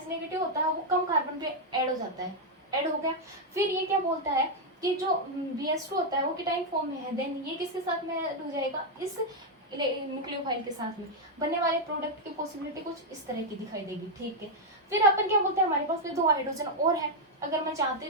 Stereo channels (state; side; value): normal; both; correlation 0.00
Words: नेगेटिव होता है वो कम कार्बन पे ऐड हो जाता है, ऐड हो गया। फिर ये क्या बोलता है कि जो BS2 होता है वो कीटाइन फॉर्म में है, देन ये किसके साथ में ऐड हो जाएगा, इस न्यूक्लियोफाइल के साथ में। बनने वाले प्रोडक्ट की पॉसिबिलिटी कुछ इस तरह की दिखाई देगी। ठीक है, फिर अपन क्या बोलते हैं, हमारे पास में 2 हाइड्रोजन और है, अगर मैं चाहती